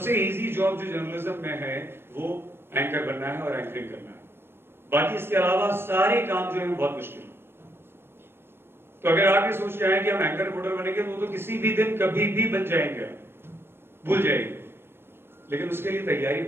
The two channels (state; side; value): late; left; 0.11 ms